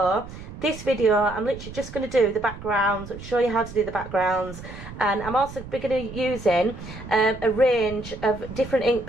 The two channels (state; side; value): noise; right; rumble, 13 dB below the sound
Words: this video I'm literally just going to do the backgrounds, show you how to do the backgrounds, and I'm also going to be using a range of different ink